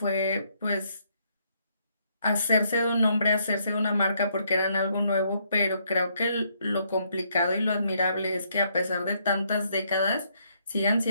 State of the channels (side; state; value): both; inverted; correlation -0.72